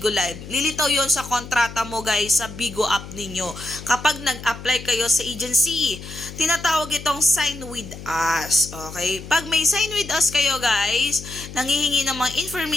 Live. Lilitaw yon sa kontrata mo guys sa Bigo app ninyo. Kapag nag-apply kayo sa agency, tinatawag itong sign with us. Okay? Pag may sign with us kayo guys, nanghihingi ng mga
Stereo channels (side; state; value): left; noise; hum, 13 dB below the sound